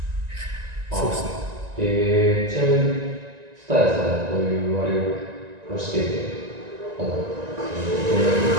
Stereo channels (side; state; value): left; late; 1.9 ms